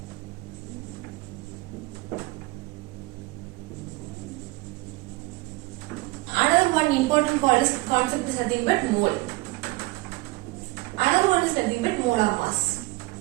Another one Another one is nothing but molar mass.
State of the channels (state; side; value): quieter; left; 22.5 dB